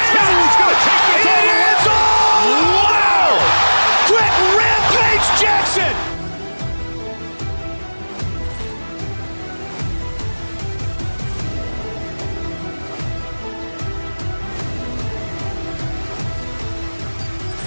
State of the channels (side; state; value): both; inverted; correlation -1.00